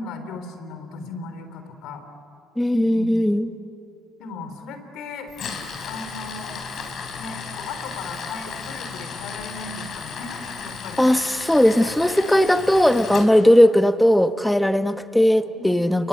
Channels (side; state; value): both; normal; correlation 0.96